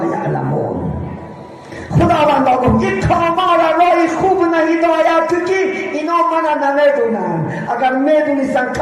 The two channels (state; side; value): identical; both; correlation 1.00